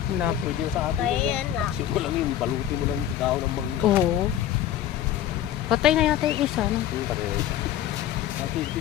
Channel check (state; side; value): quieter; right; 11.5 dB